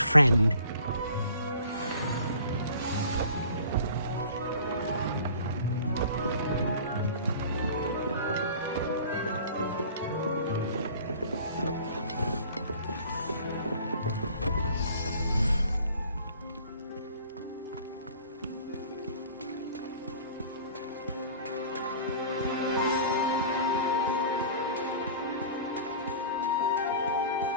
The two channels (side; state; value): both; inverted; correlation -0.46